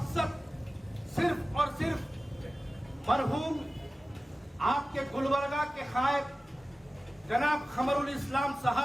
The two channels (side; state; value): both; normal; correlation 0.96